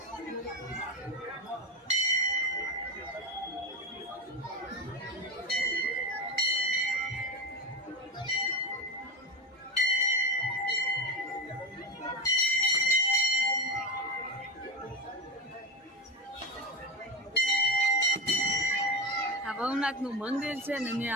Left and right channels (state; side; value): normal; both; correlation 0.17